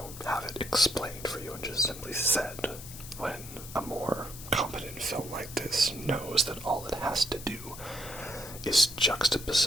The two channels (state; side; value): noise; left; hiss, 13 dB below the sound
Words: have it explained for you and just simply said, when a more competent film like this knows that all it has to do is